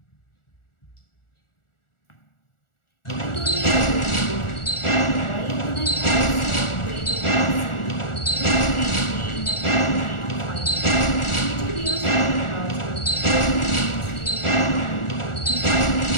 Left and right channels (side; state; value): right; late; 1.4 ms